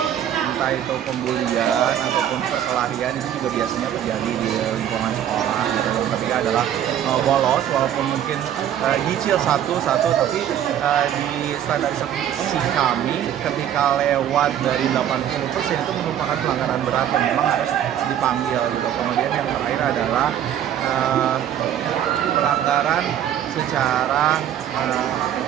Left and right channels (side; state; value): left; quieter; 10.4 dB